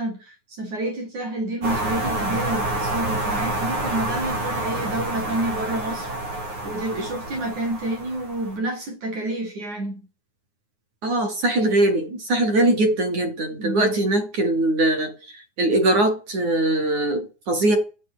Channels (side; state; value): left; late; 9.6 ms